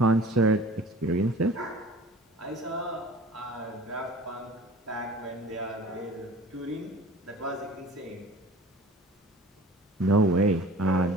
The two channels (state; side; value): normal; both; correlation 0.44